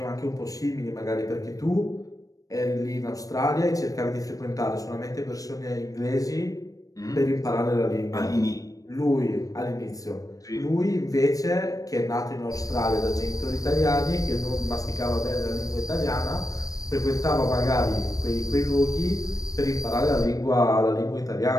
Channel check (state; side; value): late; right; 0.17 ms